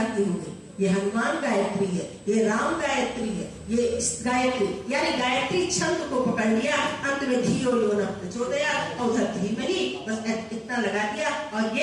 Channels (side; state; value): both; identical; correlation 1.00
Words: की हो गई, ये हनुमान गायत्री है, ये राम गायत्री है, ये गायत्री यानी गायत्री छंद को पकड़ लिया, अंत में धियो यो न प्रचोदयात् और उधर धीमहि बस इतना लगा दिया और